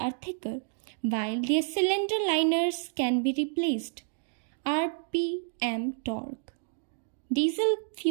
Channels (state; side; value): silent; left; digital silence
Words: thicker, while their cylinder liners can be replaced. RPM torque. Diesel